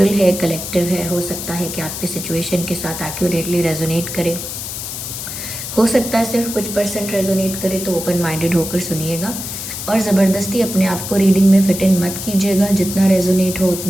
है, कलेक्टिव है। हो सकता है कि आपके सिचुएशन के साथ एक्यूरेटली रेजोनेट करे, हो सकता है सिर्फ कुछ परसेंट रेजोनेट करे, तो ओपन माइंडेड होकर सुनिएगा और ज़बरदस्ती अपने आप को रीडिंग में फिट इन मत कीजिएगा। जितना रेजोनेट हो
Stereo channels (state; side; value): noise; left; hiss, 7 dB below the sound